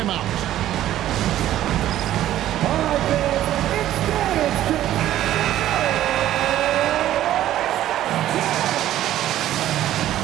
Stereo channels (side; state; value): left; quieter; 12.9 dB